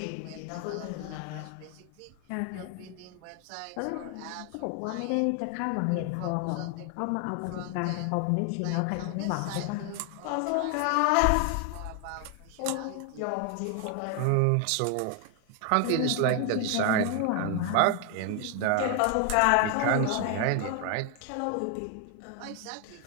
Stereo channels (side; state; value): both; different; correlation 0.00